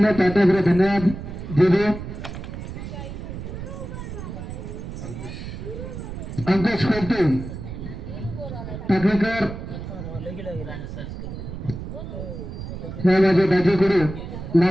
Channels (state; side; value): noise; right; rumble, 8 dB below the sound